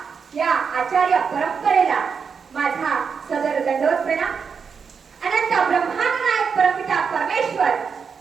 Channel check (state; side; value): quieter; left; 6.0 dB